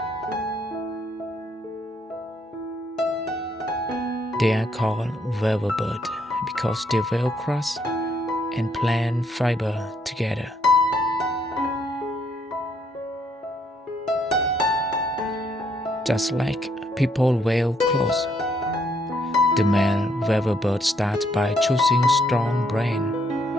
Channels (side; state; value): both; normal; correlation 0.71